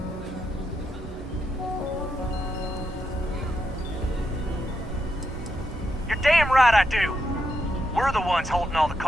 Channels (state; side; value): normal; both; correlation 0.82